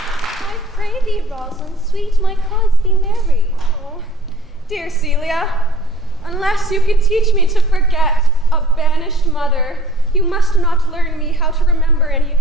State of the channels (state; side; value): normal; both; correlation 0.51